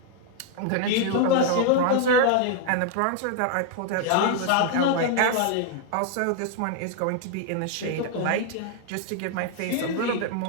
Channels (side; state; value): both; different; correlation 0.00